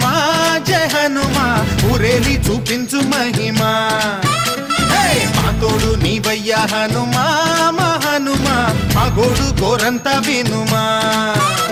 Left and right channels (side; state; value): both; identical; correlation 1.00